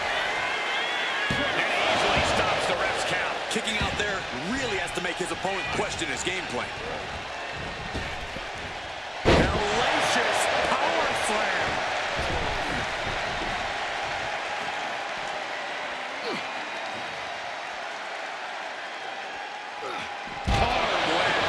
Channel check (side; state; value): both; identical; correlation 1.00